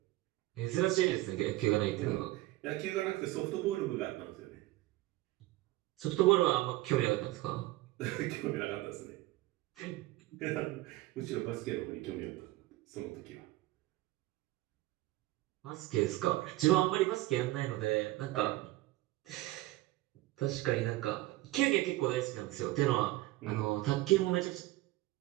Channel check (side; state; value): left; quieter; 18.1 dB